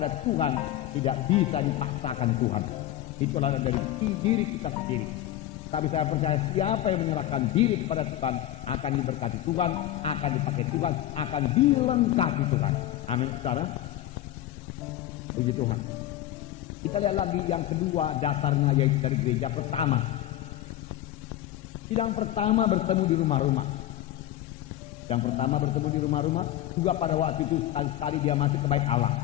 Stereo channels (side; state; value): right; quieter; 13.4 dB